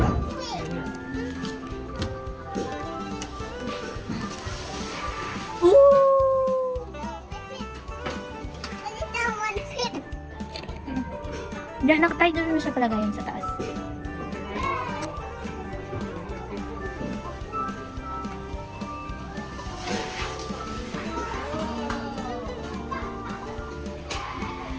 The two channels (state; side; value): identical; both; correlation 1.00